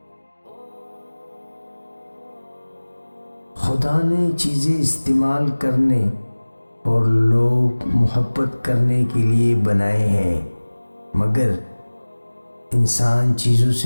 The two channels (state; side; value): inverted; both; correlation -1.00